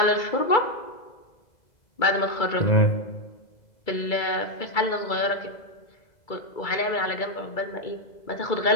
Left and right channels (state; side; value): late; right; 2.3 ms